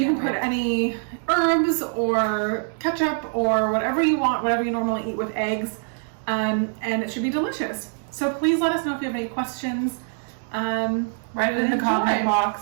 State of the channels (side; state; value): left; silent; digital silence